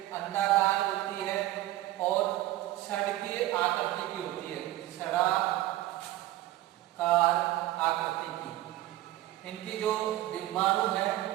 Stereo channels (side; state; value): left; quieter; 15.6 dB